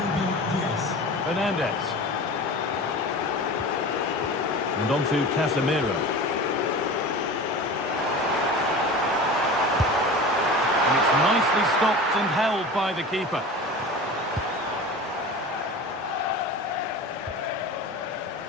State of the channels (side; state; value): both; normal; correlation 0.34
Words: Fernandez. And on to Casemiro. And it's nicely stopped and held by the keeper.